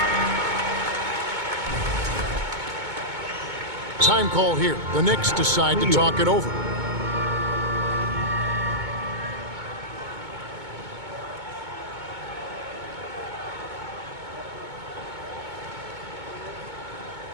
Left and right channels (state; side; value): late; left; 2.2 ms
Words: Time called here. The Knicks decide to talk it over.